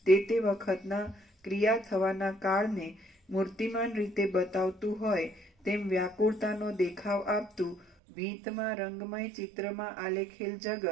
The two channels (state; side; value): drops out; left; at 7.9 s